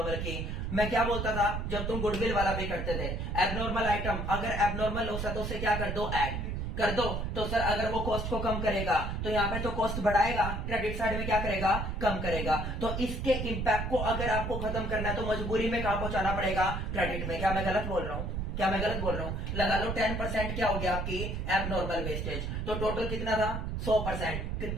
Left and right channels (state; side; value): noise; right; rumble, 3 dB below the sound